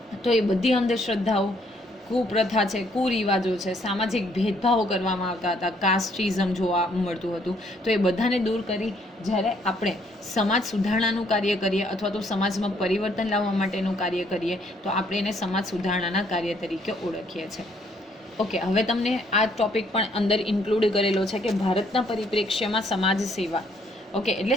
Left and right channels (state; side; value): normal; both; correlation 0.67